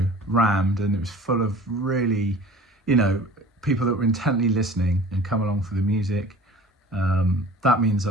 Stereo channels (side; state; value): both; normal; correlation 0.44